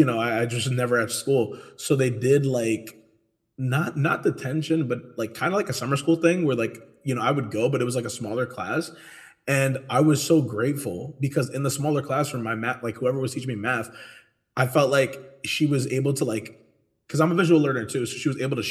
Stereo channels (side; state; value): both; identical; correlation 1.00